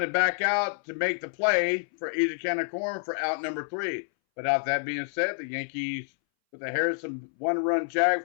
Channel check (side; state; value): right; silent; 59 dB below the other